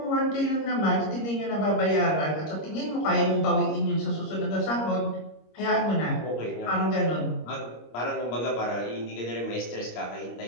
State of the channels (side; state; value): right; late; 25 ms